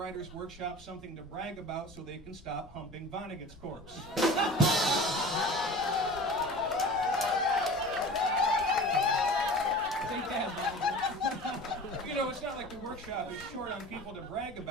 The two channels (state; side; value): normal; both; correlation 0.38